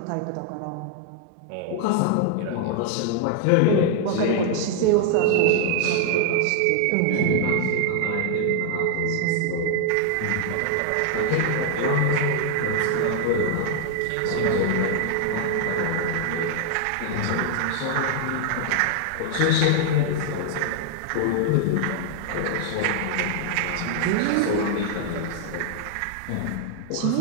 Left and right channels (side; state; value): both; different; correlation 0.00